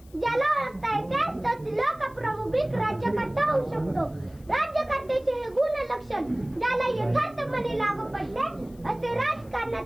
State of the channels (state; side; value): noise; left; hiss, 28 dB below the sound